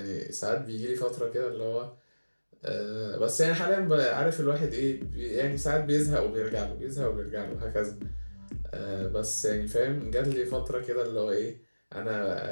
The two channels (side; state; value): both; inverted; correlation -1.00